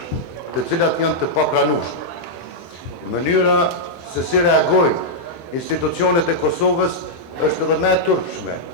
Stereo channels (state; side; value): late; right; 23 ms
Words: cilat janë të papranueshme. Mënyra se si reagojnë institucionet e Kosovës është edhe më e turpshme,